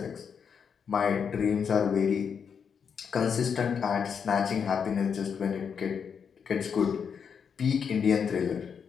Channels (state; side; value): quieter; right; 6.8 dB